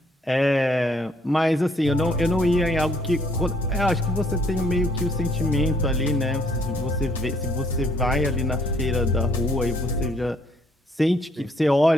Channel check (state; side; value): normal; both; correlation 0.66